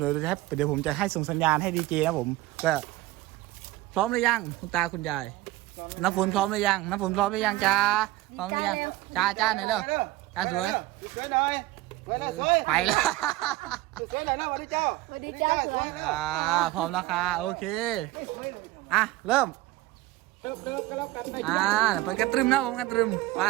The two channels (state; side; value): quieter; left; 17.2 dB